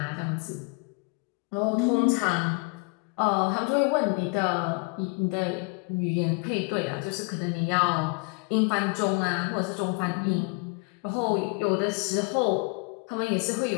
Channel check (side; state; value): right; quieter; 32.4 dB